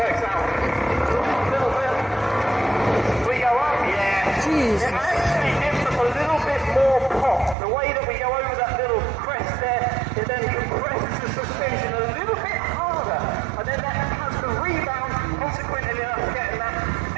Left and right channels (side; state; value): left; drops out; at 7.6 s